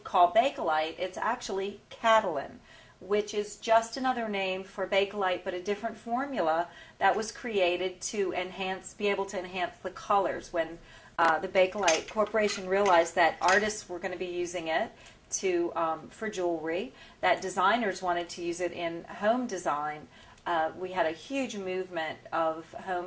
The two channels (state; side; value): identical; both; correlation 1.00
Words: call Bakelite. It's actually Catalin, which is just another name for Bakelite, but a different formula that was created to be able to enhance the colors. When the Bakelite Corporation realized that artists were going to be using it for jewelry, that designers wanted to use it in home design. We had a huge movement of